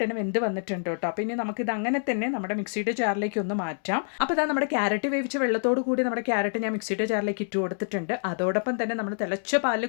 തന്നെ വെന്ത് വന്നിട്ടുണ്ട് കേട്ടോ. അപ്പോൾ ഇനി നമുക്കിത് അങ്ങനെ തന്നെ നമ്മുടെ മിക്സിയുടെ ജാറിലേക്ക് ഒന്ന് മാറ്റാം. അപ്പോൾ ഇതാ നമ്മുടെ ക്യാരറ്റ് വേവിച്ച വെള്ളത്തോട് കൂടി നമ്മുടെ ക്യാരറ്റ് ഞാൻ മിക്സിയുടെ ജാറിലേക്ക് ഇട്ട് കൊടുത്തിട്ടുണ്ട്. അതോടൊപ്പം തന്നെ നമ്മൾ തിളച്ച പാലിൽ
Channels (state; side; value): silent; right; digital silence